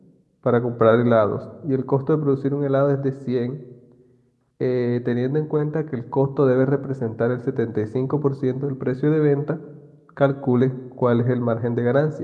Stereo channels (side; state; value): both; identical; correlation 1.00